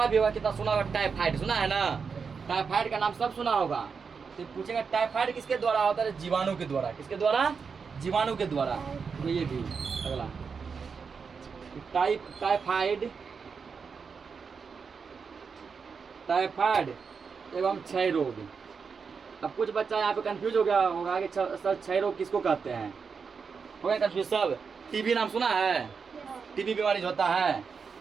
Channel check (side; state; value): left; quieter; 5.6 dB